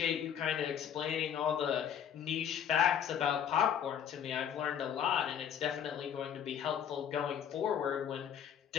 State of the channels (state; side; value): quieter; right; 8.8 dB